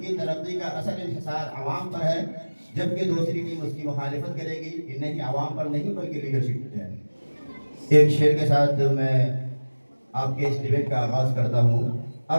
کی ترقی کا اصل انحصار عوام پر ہے, جبکہ دوسری ٹیم اس کی مخالفت کرے گی کہ نہیں, عوام پر نہیں بلکہ لیڈرشپ پر ہے. ایک شعر کے ساتھ میں آپ کے اس ڈیبیٹ کا آغاز کرتا ہوں.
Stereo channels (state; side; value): inverted; both; correlation -1.00